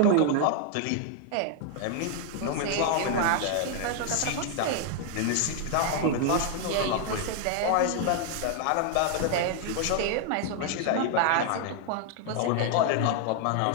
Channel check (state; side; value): different; both; correlation 0.00